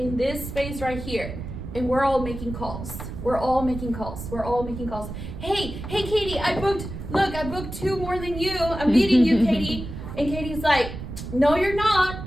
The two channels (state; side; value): noise; right; rumble, 9 dB below the sound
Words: this space right here, and we're all making calls. We're all making calls. We're all making calls. Hey, Katie, I booked 2 more than you. I'm beating you, Katie. And Katie's like, no, you're not.